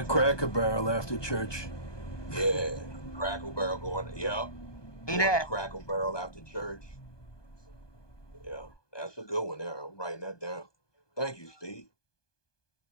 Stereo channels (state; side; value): late; right; 1.2 ms